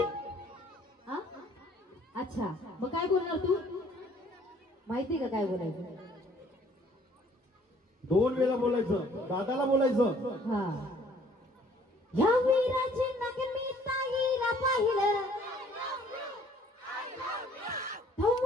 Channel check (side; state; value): both; normal; correlation 0.59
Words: हा अच्छा मग काय बोलणार तू माहिती का काय बोलायचं 2 वेळा बोलायचं दादाला बोलायचं हा या वीराची नगमी ताईला पाहिलं